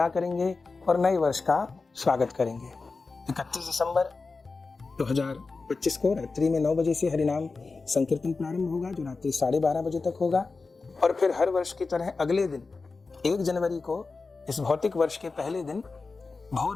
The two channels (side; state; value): right; quieter; 4.1 dB